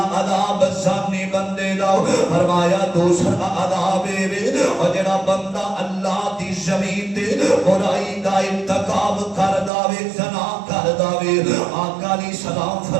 عذاب زانی بندے دا فرمایا دوسرا عذاب ہے اور جڑا بندہ اللہ دی زمین تے برائی دا ارتکاب کر داوے زنا کر داوے آقا علیہ السلام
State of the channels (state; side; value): drops out; left; at 9.7 s